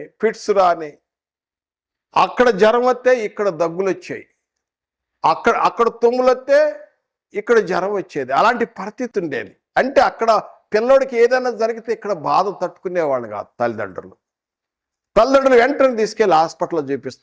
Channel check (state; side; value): identical; both; correlation 1.00